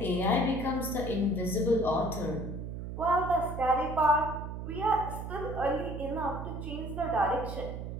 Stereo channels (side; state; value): right; noise; hum, 7 dB below the sound